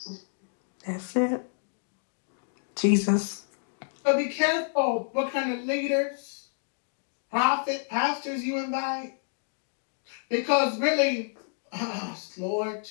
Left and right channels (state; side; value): silent; right; digital silence